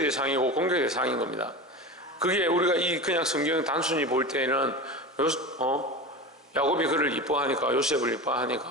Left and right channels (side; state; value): both; normal; correlation 0.28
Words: 대상이고 공격의 대상인 겁니다. 그게 우리가 그냥 성경 단순히 볼 때는 야곱이 그를 이뻐하니까, 요셉을